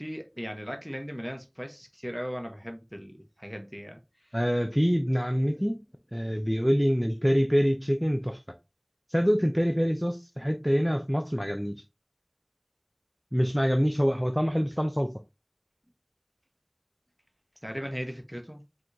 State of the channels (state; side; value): identical; both; correlation 1.00